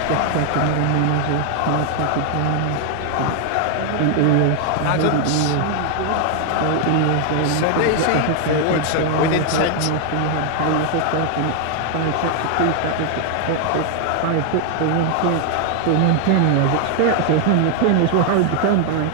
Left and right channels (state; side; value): different; both; correlation 0.00